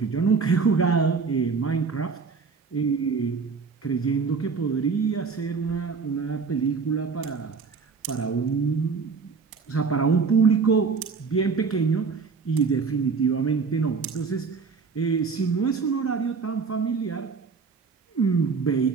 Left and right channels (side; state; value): left; quieter; 5.1 dB